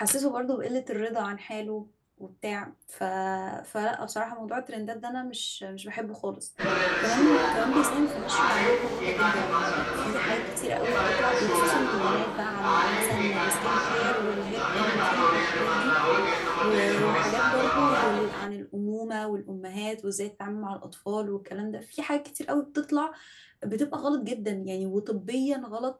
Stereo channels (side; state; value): both; identical; correlation 1.00